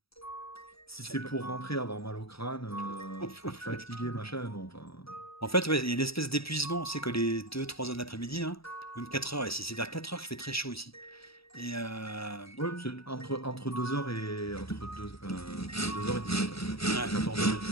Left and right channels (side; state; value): right; late; 0.77 ms